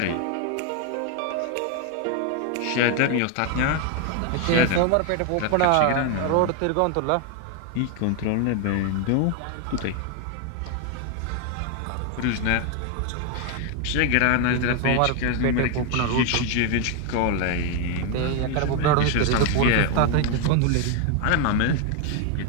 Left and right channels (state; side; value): different; both; correlation 0.01